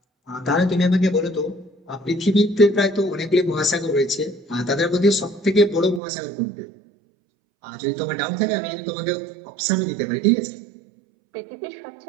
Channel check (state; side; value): drops out; left; at 6.0 s